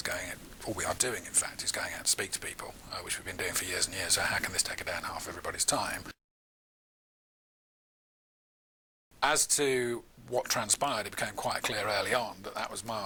we are doing, in fact, is going out to speak to people, which we've been doing for years and years. So how can this take a day and a half of everybody's time? As to what transpired, it became quite clear early on that that was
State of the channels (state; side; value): identical; both; correlation 1.00